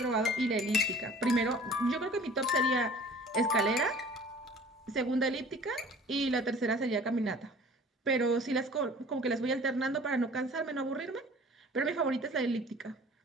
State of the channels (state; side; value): normal; both; correlation 0.48